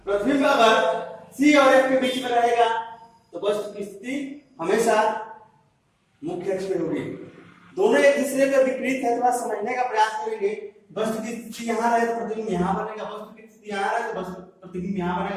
प्रतिबिंब अगर C और F के बीच में रहेगा तो वस्तु की स्थिति हमेशा मुख्य अक्ष में होगी। दोनों एक दूसरे के विपरीत है, थोड़ा समझने का प्रयास करेंगे। वस्तु की स्थिति यहाँ रहे तो प्रतिबिंब यहाँ बनेगा, वस्तु की स्थिति यहाँ रहे तो प्रतिबिंब यहाँ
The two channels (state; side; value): identical; both; correlation 1.00